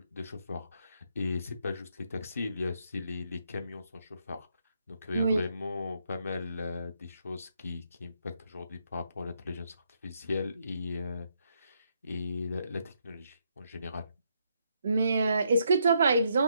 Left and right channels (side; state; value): both; inverted; correlation -0.76